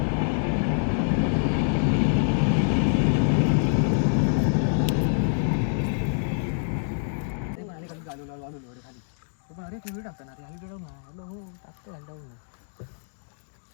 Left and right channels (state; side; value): silent; right; digital silence